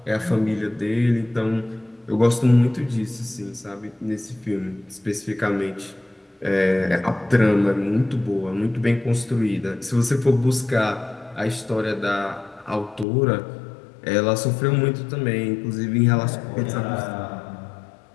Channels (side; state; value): right; drops out; at 13.1 s